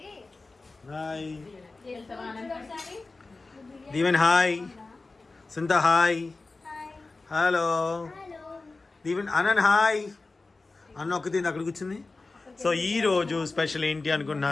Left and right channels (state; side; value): quieter; right; 3.6 dB